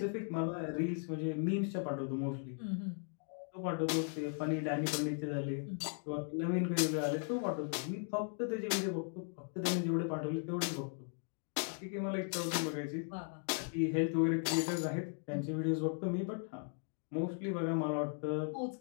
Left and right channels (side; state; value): right; silent; 53 dB below the other